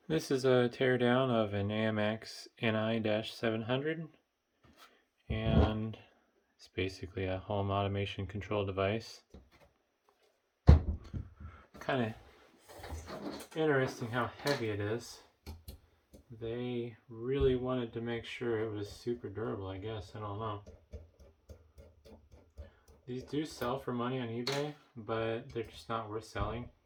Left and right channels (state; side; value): identical; both; correlation 1.00